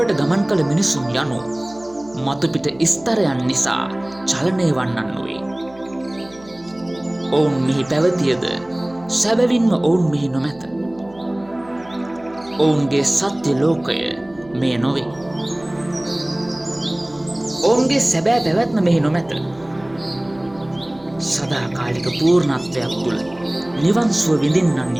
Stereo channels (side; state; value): right; noise; hum, 24 dB below the sound